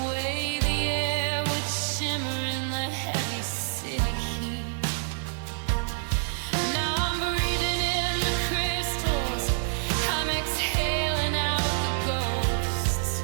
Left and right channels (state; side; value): silent; left; 60 dB below the other